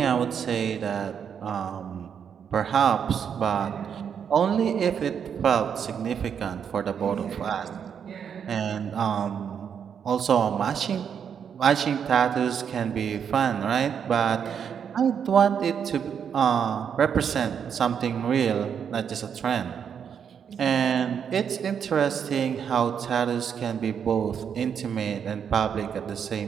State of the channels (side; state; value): left; quieter; 7.6 dB